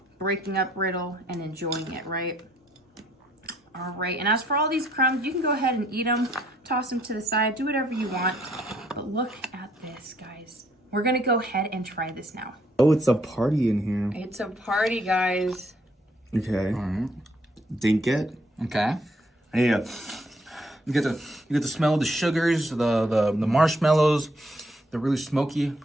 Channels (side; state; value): both; normal; correlation 0.68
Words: breaking up brittle, and enjoying it, right? All right, and as for all these crumbs, you can go ahead and eat them, toss them to the side, do whatever you want. But look at this, guys. We're gonna go ahead and try this now. Oh, it's a party in here. It's a party, guys. Okay. All right. Dink it. Okay. Yeah. You get the smell of the sugars, the marshmallows. They're really smoky.